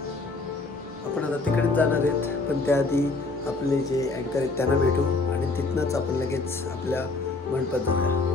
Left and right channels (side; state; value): right; quieter; 3.5 dB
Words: आपण आता तिकडेच जाणार आहेत, पण त्याआधी आपले जे अँकर आहेत त्यांना भेटू आणि तिथनंच आपण लगेच आपल्या मंडपात जाऊया.